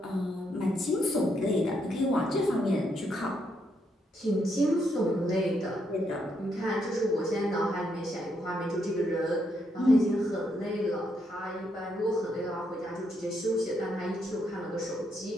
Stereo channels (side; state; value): both; normal; correlation 0.77